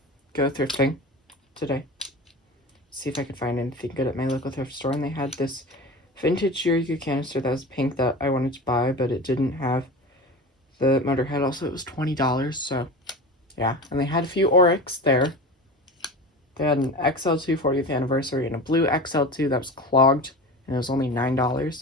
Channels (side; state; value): both; normal; correlation 0.31